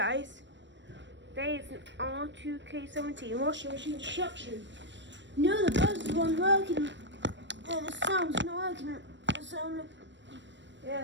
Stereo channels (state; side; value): late; left; 0.53 ms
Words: today is an R2K17 washing machine destruction. No, the buzz wasn't working, and the sound's not working. The sound,